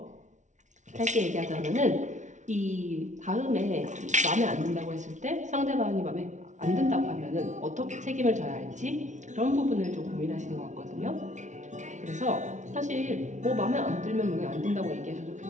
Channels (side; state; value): left; late; 0.36 ms